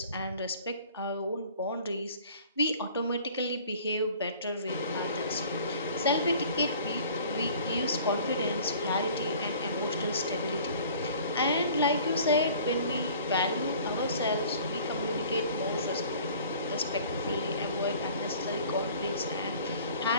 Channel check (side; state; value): both; inverted; correlation -0.49